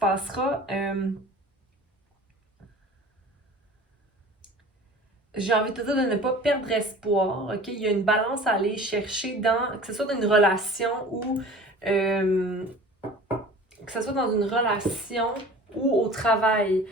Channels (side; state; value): both; normal; correlation 0.42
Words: j'ai envie de te dire de ne pas perdre espoir. Okay? Il y a une balance à aller chercher dans, que ce soit dans une relation ou que ce soit dans une relation ou au travail.